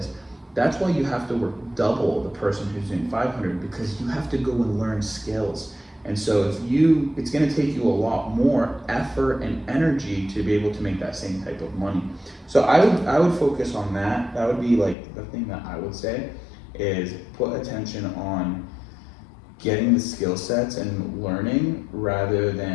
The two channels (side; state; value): right; drops out; at 15.0 s